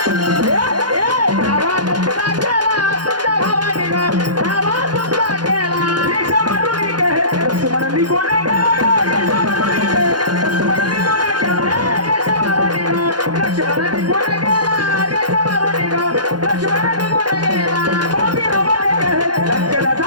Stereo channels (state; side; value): late; left; 0.70 ms